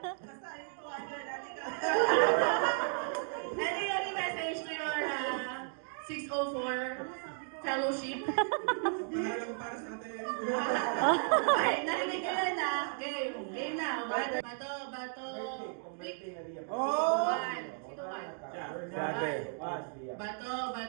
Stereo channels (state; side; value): silent; left; 55 dB below the other